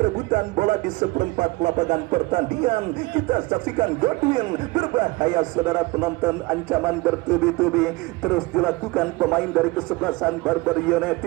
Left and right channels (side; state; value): left; quieter; 22.6 dB